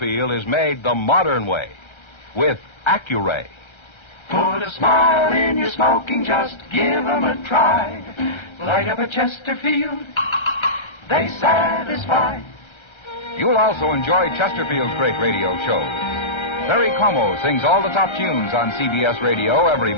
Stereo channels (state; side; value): late; right; 1.3 ms